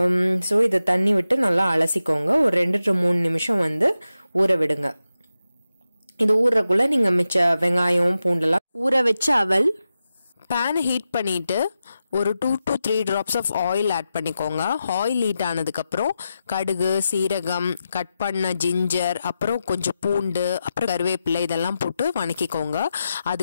சோ இத தண்ணி விட்டு நல்லா அலசிக்கோங்க. ஒரு 2 to 3 நிமிஷம் ஊற விடுங்க. இது ஊறக்குள்ள நீங்க மிச்ச வெங்காயம் பூண்டெல்லாம் ஊற வச்ச அவல் pan heat பண்ணிட்டு ஒரு 2 to 3 drops of oil add பண்ணிக்கோங்க. oil heat ஆனதுக்கு அப்புறம் கடுகு, சீரகம், கட் பண்ண ஜிஞ்சர், அப்புறம் கொஞ்சம் பூண்டு, அப்புறம் கறிவேப்பிலை இதெல்லாம் போட்டு வணக்கிக்கோங்க.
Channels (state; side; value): inverted; both; correlation -0.90